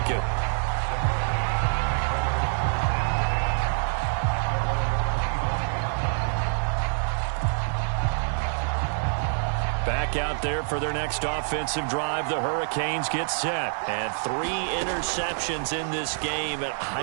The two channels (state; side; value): silent; left; digital silence